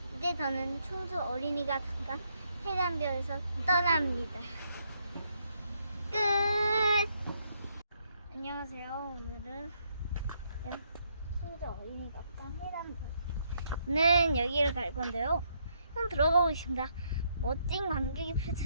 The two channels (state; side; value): inverted; both; correlation -0.74